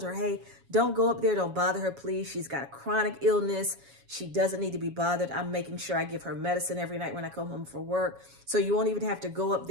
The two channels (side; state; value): left; late; 7.2 ms